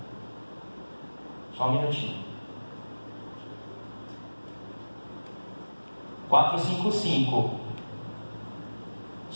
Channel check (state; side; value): inverted; both; correlation -1.00